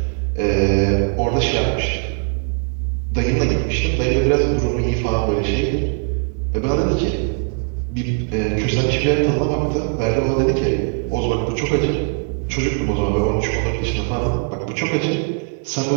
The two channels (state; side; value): quieter; left; 38.6 dB